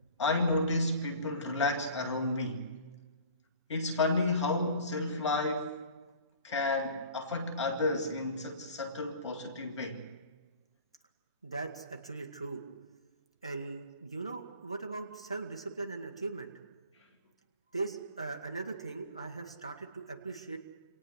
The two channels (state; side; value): inverted; both; correlation -0.44